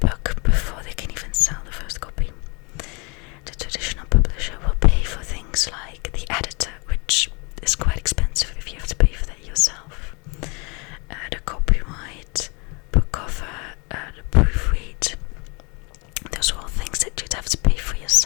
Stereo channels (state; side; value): quieter; right; 30.6 dB